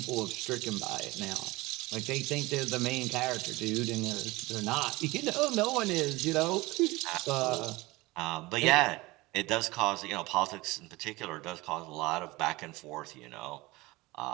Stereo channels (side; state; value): left; quieter; 21.3 dB